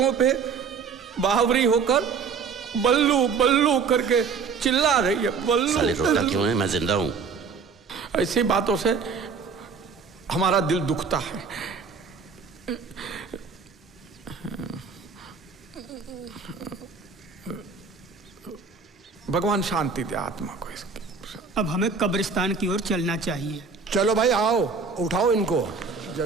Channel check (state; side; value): quieter; left; 5.4 dB